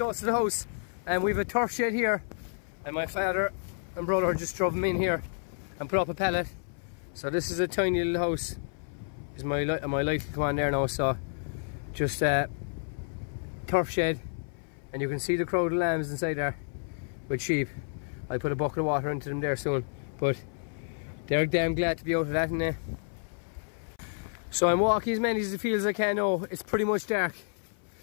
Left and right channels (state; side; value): silent; right; 58 dB below the other